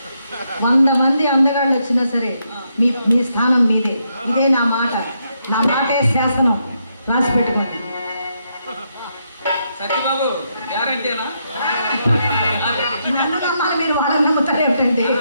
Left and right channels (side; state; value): both; inverted; correlation -0.79